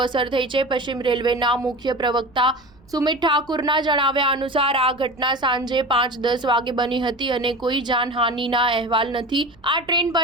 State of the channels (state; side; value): noise; right; rumble, 29 dB below the sound